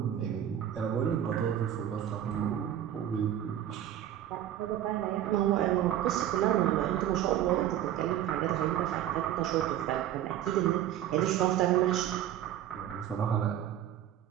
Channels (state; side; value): quieter; left; 11.3 dB